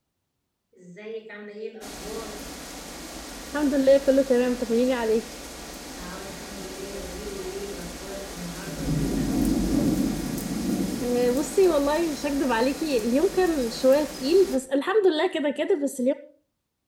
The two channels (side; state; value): both; identical; correlation 1.00